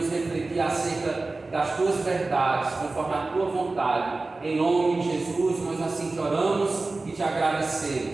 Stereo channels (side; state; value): left; quieter; 3.4 dB